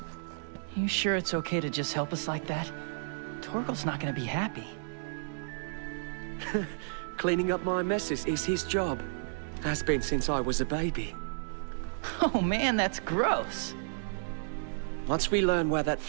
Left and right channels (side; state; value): left; silent; digital silence